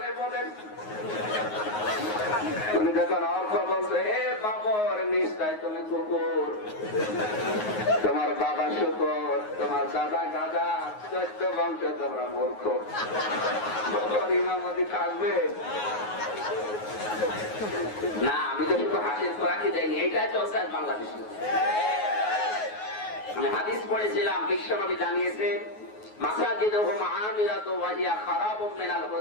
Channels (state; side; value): late; right; 9.5 ms